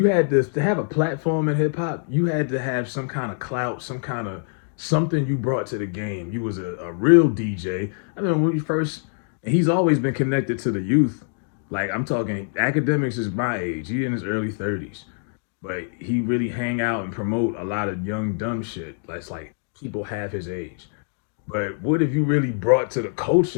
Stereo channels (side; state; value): right; silent; digital silence